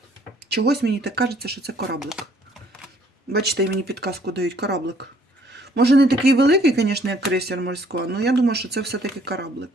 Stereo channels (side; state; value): both; normal; correlation 0.61